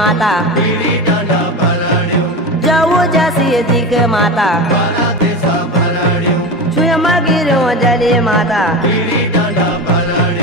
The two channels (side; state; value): both; normal; correlation 0.24